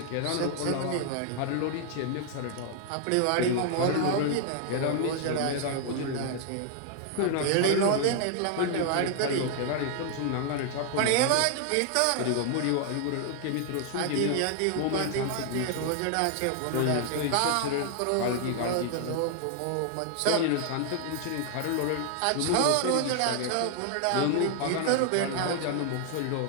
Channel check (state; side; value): different; both; correlation 0.00